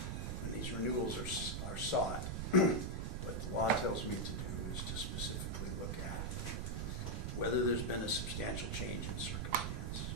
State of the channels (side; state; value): right; noise; rumble, 2 dB below the sound